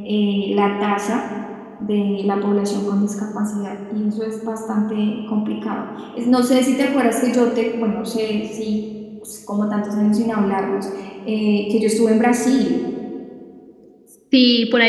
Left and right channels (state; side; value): identical; both; correlation 1.00